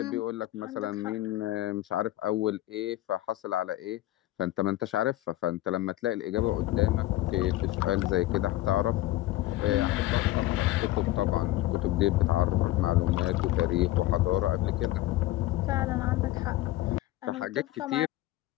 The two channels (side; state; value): right; quieter; 16.1 dB